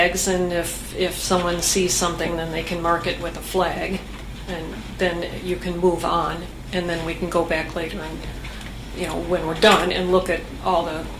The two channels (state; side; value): identical; both; correlation 1.00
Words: and if someone sees something, then they can mark it with a flag, and then you can move on, and then we can go back later and, when we're done, and look at all